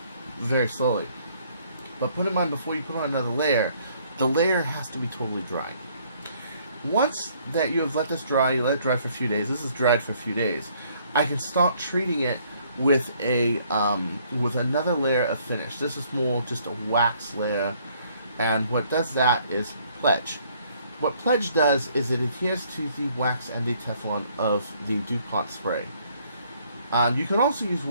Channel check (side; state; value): both; inverted; correlation -0.64